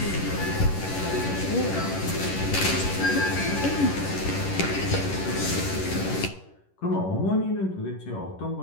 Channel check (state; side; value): late; right; 11 ms